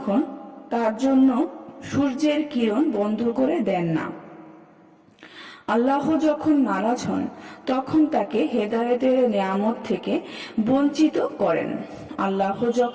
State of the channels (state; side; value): identical; both; correlation 1.00